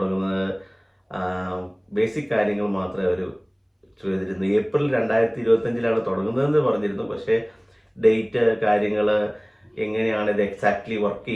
ബേസിക് കാര്യങ്ങൾ മാത്രമേ അവർ ചെയ്തിരുന്നു. ഏപ്രിൽ 2025 തുടങ്ങുന്നതെന്ന് പറഞ്ഞിരുന്നു. പക്ഷേ ഡേറ്റ്, കാര്യങ്ങൾ, എങ്ങനെയാണ് ഇത് എക്സാക്ട്ലി വർക്ക്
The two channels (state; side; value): identical; both; correlation 1.00